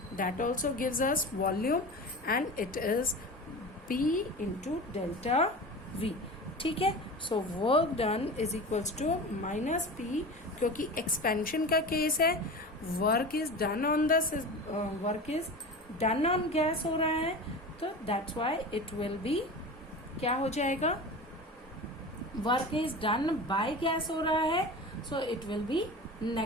that also gives us volume, and it is P into delta V. ठीक है. So work done is equals to minus P, क्योंकि एक्सपेंशन का केस है, work is done on the work is done on gas हो रहा है, तो that's why it will be क्या हो जाएगा? Work is done by gas हो रहा है, so it will be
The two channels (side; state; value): both; normal; correlation 0.31